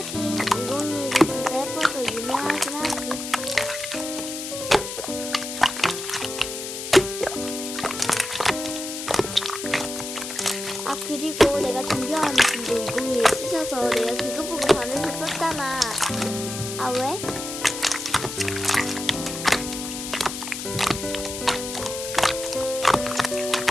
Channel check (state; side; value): noise; left; hiss, 7 dB below the sound